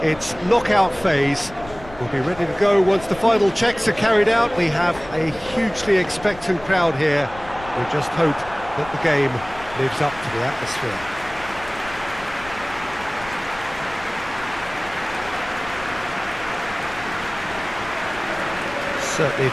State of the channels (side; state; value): left; noise; rumble, 18 dB below the sound